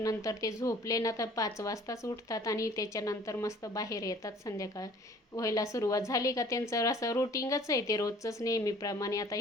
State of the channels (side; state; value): both; normal; correlation 0.52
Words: ते झोपले ना तर 5 वाजताच उठतात आणि त्याच्यानंतर मस्त बाहेर येतात. संध्याकाळ व्हायला सुरुवात झाली का त्यांचं असं रुटीनच आहे ते रोजचंच नेहमीप्रमाणे. आता